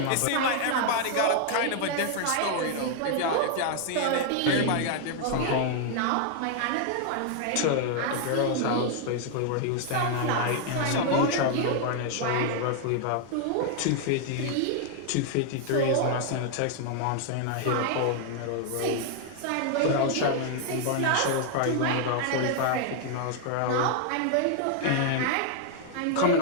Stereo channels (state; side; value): different; both; correlation 0.00